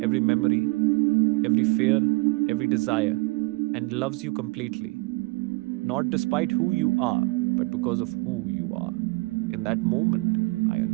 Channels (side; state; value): left; quieter; 25.1 dB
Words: every memory, every fear, every desire, and loves you completely. Not despite who you are, but because of who you are. In that moment, I